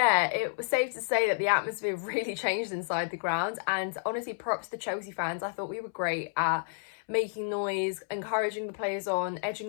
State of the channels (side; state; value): right; silent; 58 dB below the other